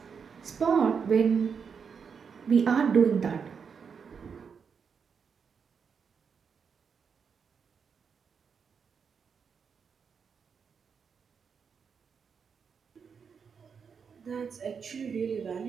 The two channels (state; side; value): quieter; left; 6.3 dB